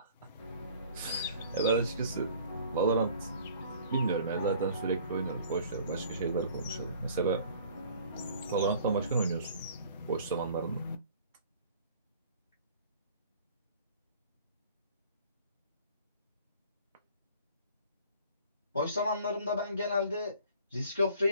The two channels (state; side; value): inverted; both; correlation -0.51